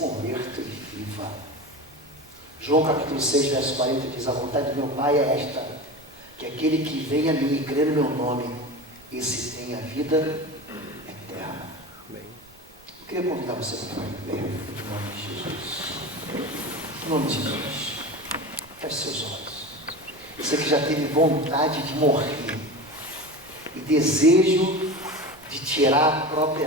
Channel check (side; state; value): right; noise; rumble, 29 dB below the sound